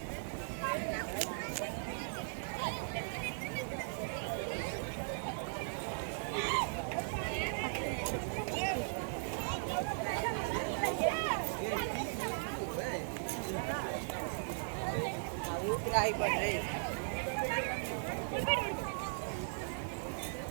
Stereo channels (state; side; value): silent; left; digital silence